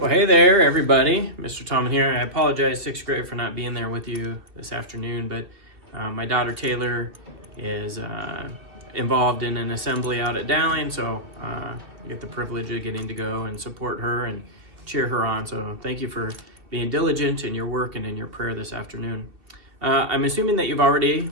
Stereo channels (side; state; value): left; late; 2.8 ms